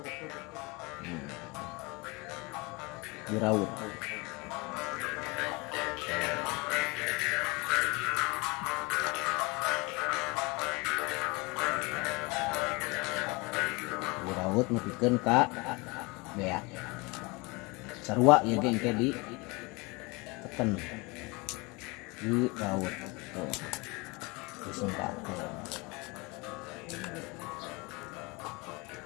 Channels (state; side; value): quieter; right; 26.5 dB